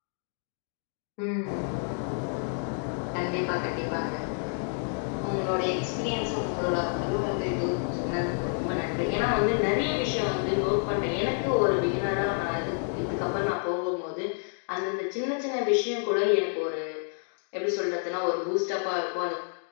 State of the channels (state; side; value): silent; right; 56 dB below the other